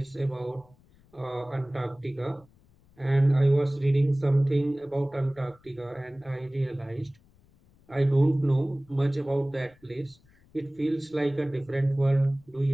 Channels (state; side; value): noise; left; rumble, 30 dB below the sound